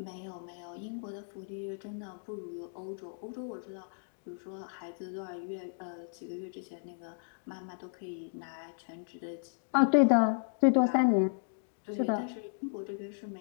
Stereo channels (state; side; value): silent; right; digital silence